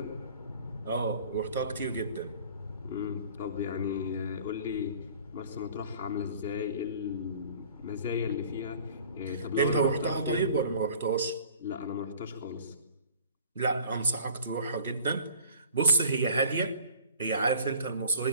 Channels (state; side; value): inverted; both; correlation -0.48